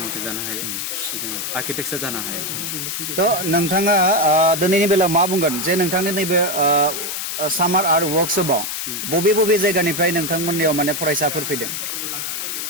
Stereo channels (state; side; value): noise; left; hiss, 4 dB below the sound